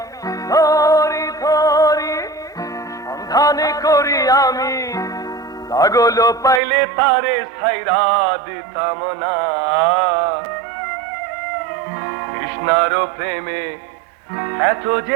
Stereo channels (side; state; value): left; drops out; at 6.6 s